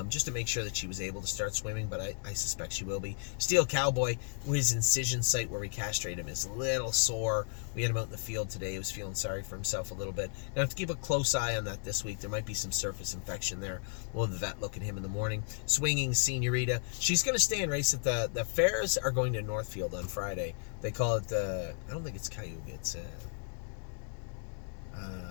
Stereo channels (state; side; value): silent; right; 55 dB below the other